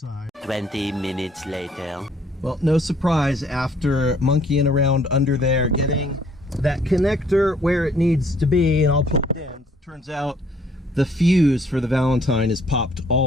20 minutes later. Well, no surprise, after monkeying around under there, getting that connector where it needs to be and all plugged in, turns out the fuse for the Valentine is popped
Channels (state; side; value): normal; both; correlation 0.62